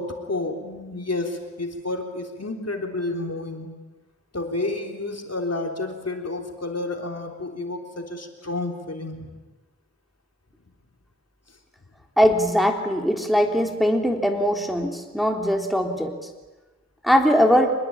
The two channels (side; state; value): both; normal; correlation 0.68